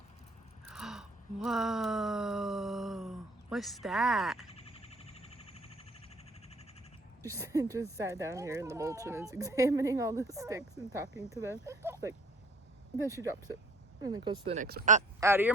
Whoa. What's that? Just sat down here in the mulch and is examining all the sticks and talking to them. Like, then she drops it and then goes to the next one. Out of your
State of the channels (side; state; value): both; normal; correlation 0.54